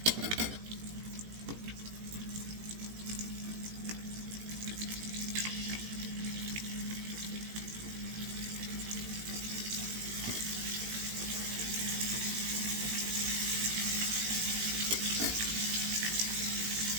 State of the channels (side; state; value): left; late; 18 ms